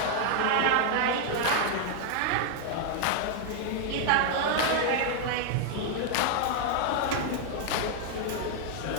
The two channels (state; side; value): different; both; correlation 0.00